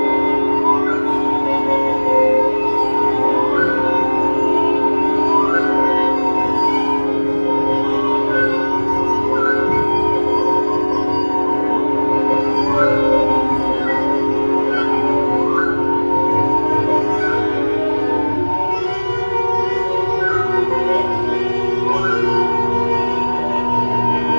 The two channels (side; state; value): both; inverted; correlation -1.00